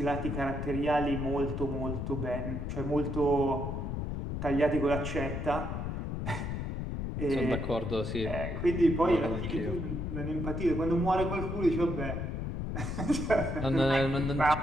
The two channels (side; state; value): left; noise; rumble, 3 dB below the sound